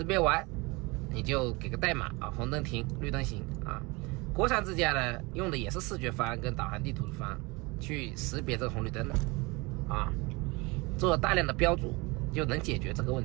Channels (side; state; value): left; quieter; 25.7 dB